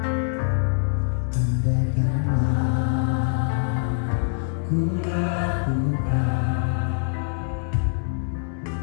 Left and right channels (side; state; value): right; silent; digital silence